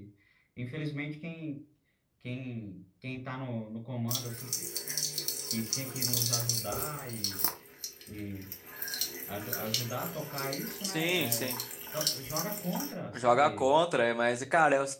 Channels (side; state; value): both; identical; correlation 1.00